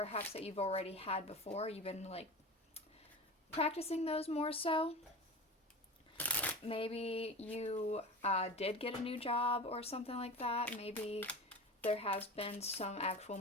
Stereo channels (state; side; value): normal; both; correlation 0.31